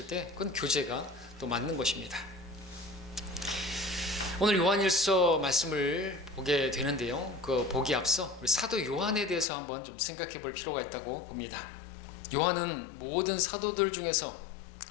때 그건 교제가 또 맞는 것입니다. 오늘 요한일서 말씀을 보게 되는데요, 그 보기 앞서 우리 사도 요한에 대해서 한번 좀 생각해 볼 필요가 있다고 봅니다. 요한은 모든 사도들 중에서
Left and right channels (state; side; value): drops out; right; at 9.5 s